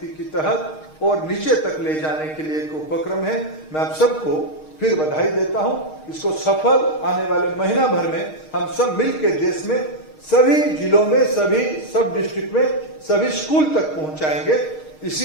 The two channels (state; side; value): late; right; 6.5 ms